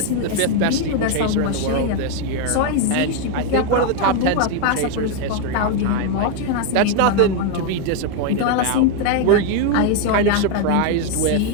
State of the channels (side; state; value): both; different; correlation 0.01